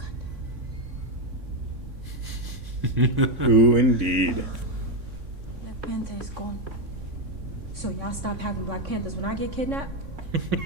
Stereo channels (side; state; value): left; late; 3.6 ms